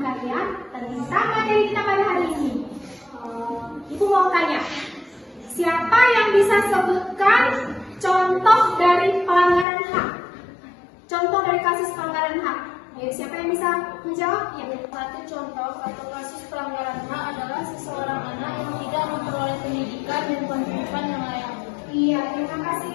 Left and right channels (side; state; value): right; drops out; at 9.7 s